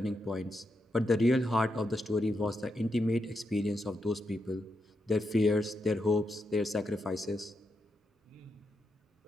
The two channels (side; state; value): both; normal; correlation 0.84